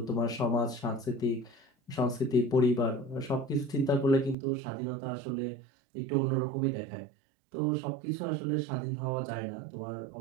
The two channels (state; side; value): drops out; left; at 4.4 s